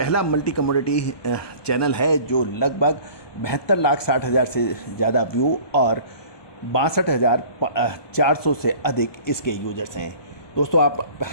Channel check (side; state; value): right; late; 1.2 ms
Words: मल्टी कमोडिटी चैनल है जो लगभग 72,60,000 से ज़्यादा व्यू और 62,400 से अधिक इसके यूजर्स हैं। दोस्तों आप